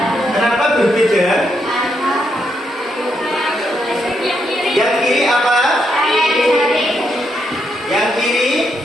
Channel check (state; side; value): normal; both; correlation 0.79